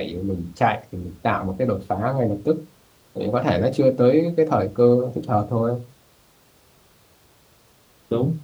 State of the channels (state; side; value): identical; both; correlation 1.00